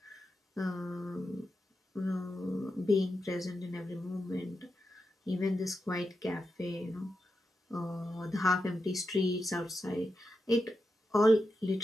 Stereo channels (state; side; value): normal; both; correlation 0.88